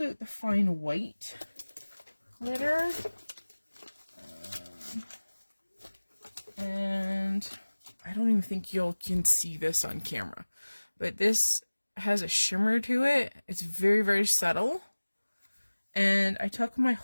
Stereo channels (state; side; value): inverted; both; correlation -1.00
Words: out the fine white glitter. And I don't even think you can see this on camera. But this has a shimmer to it. It's very, very subtle. And I took my